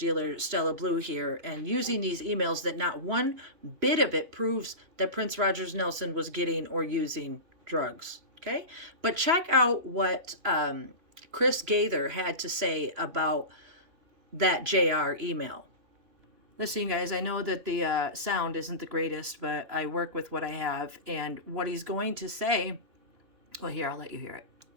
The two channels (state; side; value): late; left; 2.9 ms